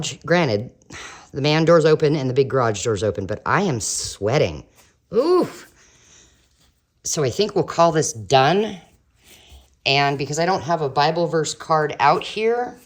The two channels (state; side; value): identical; both; correlation 1.00